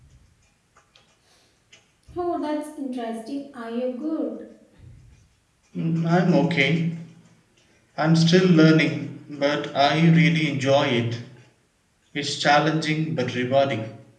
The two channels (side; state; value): both; identical; correlation 1.00